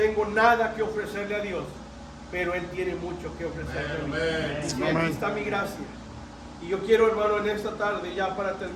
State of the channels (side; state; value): both; identical; correlation 1.00